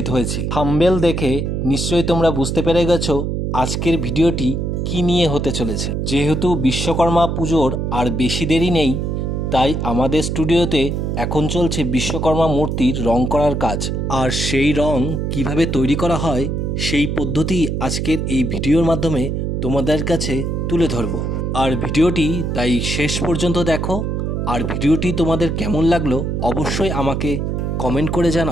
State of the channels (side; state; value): right; noise; hum, 1 dB below the sound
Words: হয়েছি। থাম্বনেল দেখে নিশ্চয়ই তোমরা বুঝতে পেরে গেছো আজকের ভিডিওটি কি নিয়ে হতে চলেছে। যেহেতু বিশ্বকর্মা পুজোর আর বেশি দেরি নেই, তাই আমাদের স্টুডিওতে এখন চলছে বিশ্বকর্মা মূর্তির রং করার কাজ। আর সেই রং কিভাবে তৈরি করা হয় সেই পদ্ধতি আজকের এই ভিডিওর মাধ্যমে তোমাদের কাছে তুলে ধরবো। আর ভিডিওটি তাই শেষ পর্যন্ত দেখো। আর ভিডিওটি তোমাদের কেমন লাগলো অবশ্যই আমাকে কমেন্ট করে